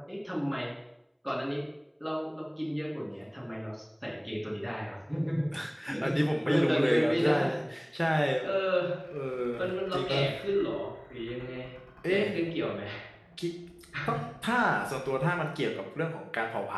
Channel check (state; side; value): identical; both; correlation 1.00